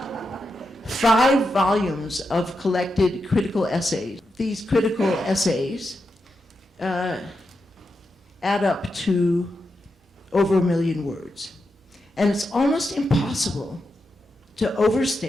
5 volumes of collected critical essays. These critical essays add up to over 1 million words. And it's almost impossible to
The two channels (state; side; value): normal; both; correlation 0.87